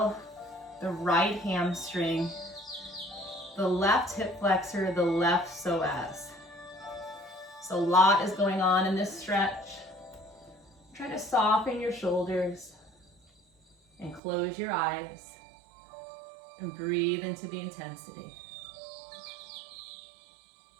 the right hamstring, the left hip flexor, the left psoas. So a lot is going on in this stretch. Try to soften your shoulders and close your eyes and breathe into the intensity.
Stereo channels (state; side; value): drops out; left; at 14.2 s